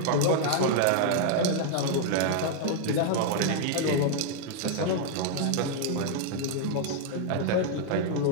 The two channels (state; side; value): different; both; correlation 0.00